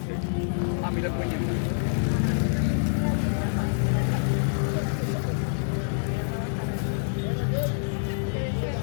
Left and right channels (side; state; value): right; silent; digital silence